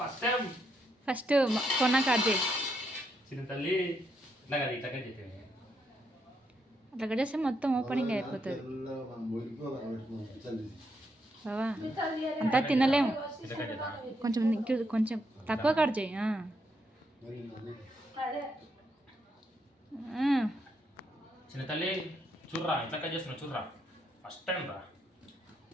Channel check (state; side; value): normal; both; correlation 0.78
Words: ఫస్ట్ టైం. ఫస్ట్ కొన్నా కట్ చేయి చిన్న తల్లి. ఇట్లా కదా, ఇట్లా కట్ చేయండి. అట్లా కట్ చేస్తే మొత్తం ఓపెనింగ్ అయిపోతుంది బావా. అంతా తినలేము, కొంచెం కొంచెం తక్కువ కట్ చేయి. చిన్న తల్లి చూర్రా, ఇట్లా కట్ చేస్తున్నా చూర్రా, ఫస్ట్ టైం రా.